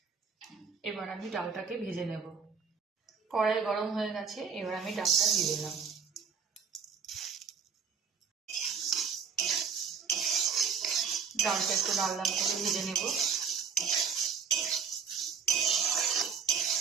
এবার আমি ডালটাকে ভেজে নেব। কড়াই গরম হয়ে গেছে, এবার আমি ডালটা দিয়ে দিলাম। ডালটা একটু লাল লাল করে ভেজে নেব।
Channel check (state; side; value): quieter; left; 6.3 dB